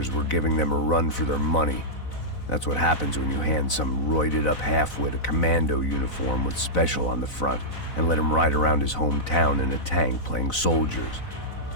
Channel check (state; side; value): late; right; 4.0 ms